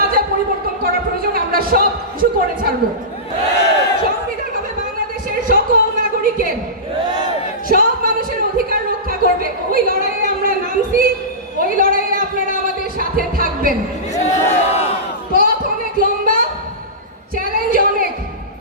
যা পরিবর্তন করা প্রয়োজন, আমরা সব কিছু করে ছাড়বো। সংবিধান হবে বাংলাদেশের সকল নাগরিকের, সব মানুষের অধিকার রক্ষা করবে। ওই লড়াইয়ে আমরা নামছি, ওই লড়াইয়ে আপনারা আমাদের সাথে থাকবেন। পথ অনেক লম্বা, চ্যালেঞ্জ অনেক,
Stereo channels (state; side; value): normal; both; correlation -0.19